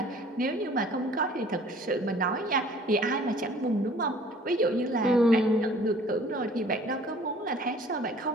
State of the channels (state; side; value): normal; both; correlation 0.52